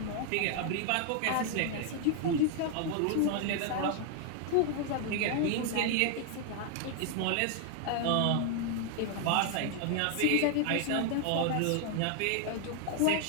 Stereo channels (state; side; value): different; both; correlation 0.00